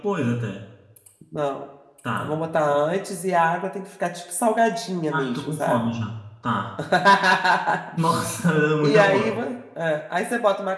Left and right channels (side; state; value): both; identical; correlation 1.00